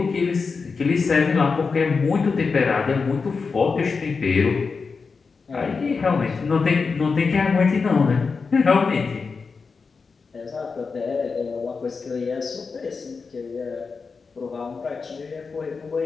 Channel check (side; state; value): right; quieter; 4.9 dB